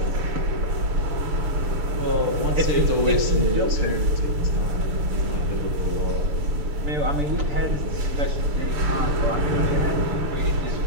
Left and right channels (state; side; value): late; left; 6.8 ms